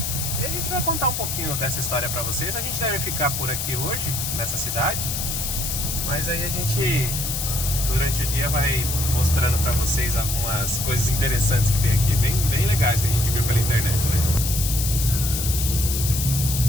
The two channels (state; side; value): noise; left; hiss, 2 dB below the sound